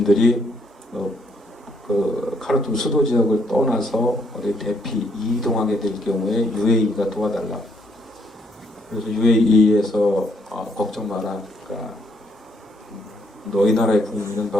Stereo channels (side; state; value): both; normal; correlation 0.72